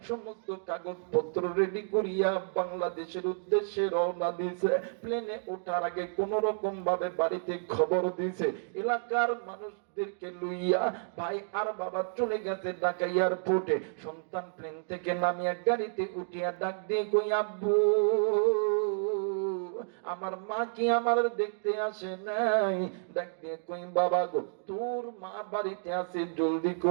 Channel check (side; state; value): left; silent; digital silence